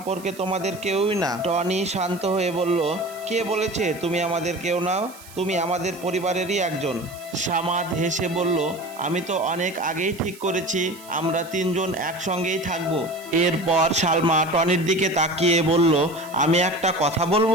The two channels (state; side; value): noise; right; hiss, 20 dB below the sound